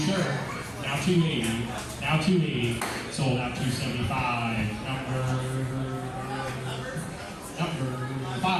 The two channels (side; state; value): both; identical; correlation 1.00